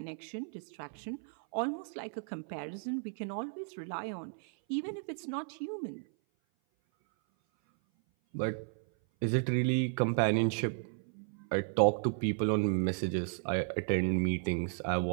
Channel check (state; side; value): silent; left; 55 dB below the other